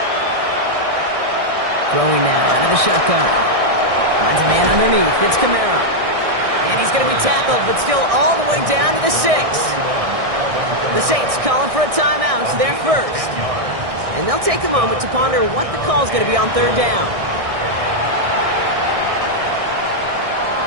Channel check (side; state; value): left; late; 1.6 ms